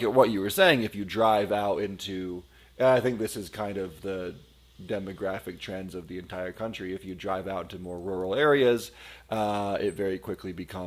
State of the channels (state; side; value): identical; both; correlation 1.00